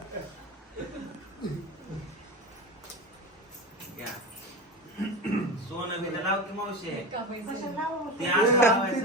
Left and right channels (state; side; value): normal; both; correlation 0.25